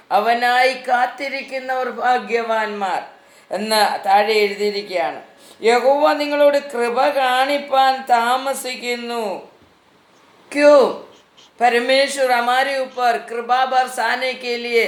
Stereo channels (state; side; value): identical; both; correlation 1.00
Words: അവനായി കാത്തിരിക്കുന്നവർ ഭാഗ്യവാന്മാർ എന്ന് താഴെ എഴുതിയിരിക്കുകയാണ്. യഹോവ നിങ്ങളോട് കൃപ കാണിപ്പാൻ താമസിക്കുന്നു. क्यों? परमेश्वर हमारे ऊपर कृपा बरसाने के लिए